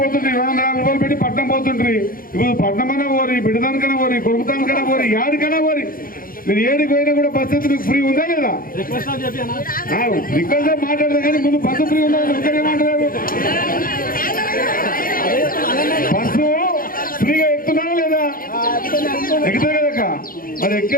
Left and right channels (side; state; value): right; late; 0.41 ms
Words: పోతుండ్రి, 250 రూపాయలు పెట్టి పట్నం పోతుండ్రి. ఇప్పుడు పట్నమన్నా పోరి, బిడ్డదానికైనా పోరి, కొడుకుతానికైనా పోరి, యాడికైనా పోరి, మీరు ఏడికి పోయినా కూడా బస్ అయితే మీకు ఫ్రీ ఉందా లేదా? రిక్వెస్ట్ మాట్లాడదా కానీ ముందు బస్సు ఫ్రీ ఉందా? ఇంకనే మాట్లాడారు. బస్సు ఫ్రీగా ఎక్కుతున్నారా లేదా? ఎక్కుతారు కదా, మరి